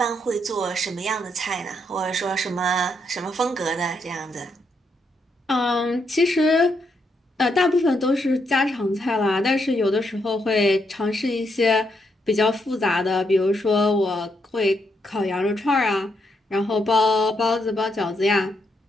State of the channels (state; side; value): normal; both; correlation 0.78